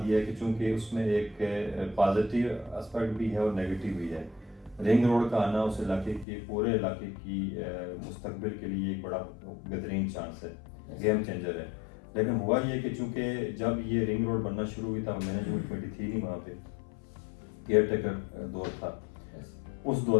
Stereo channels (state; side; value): drops out; right; at 6.2 s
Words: یہ ہے کہ چونکہ اس میں ایک پازیٹیو اسپیکٹ بھی ہے اور نیگیٹو بھی ہے، رنگ روڈ کا آنا اس علاقے کے پورے علاقے کی مستقبل کے لیے ایک بڑا بہترین چانس ہے، گیم چینجر ہے۔ لیکن ہوا یہ کہ چونکہ جب یہ رنگ روڈ بننا شروع ہوئی تھا، مینجمنٹ کمیٹی تھی نہیں وہاں پہ، کیئر ٹیکر دور تھا، اس